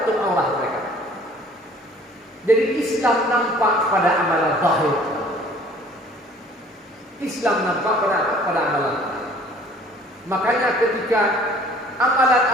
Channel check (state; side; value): normal; both; correlation 0.53